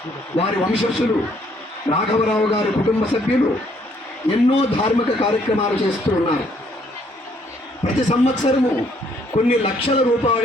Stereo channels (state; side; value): normal; both; correlation 0.66